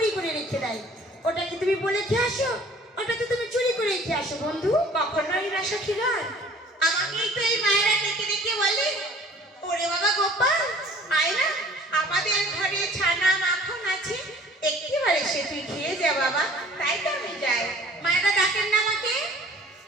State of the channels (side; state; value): both; normal; correlation 0.51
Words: করে রেখে দেয়, ওটা কি তুমি বলে খেয়ে আসো? ওটা তো তুমি চুরি করে খেয়ে আসো বন্ধু। কখনোই না সখীগণ, আমাকেই তো এই মায়েরা ডেকে ডেকে বলে, ওরে বাবা গোপাল, আয় না, আমাদের ঘরে ছানা মাখন আছে, একেবারে সে তুই খেয়ে যা বাবা। তাই তো আমি যাই। মায়েরা ডাকেন না আমাকে?